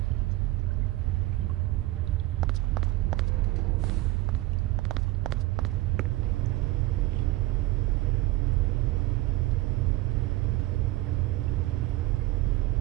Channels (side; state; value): left; quieter; 18.2 dB